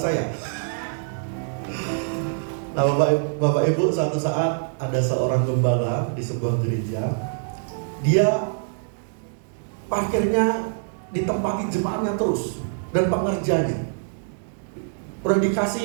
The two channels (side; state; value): left; silent; digital silence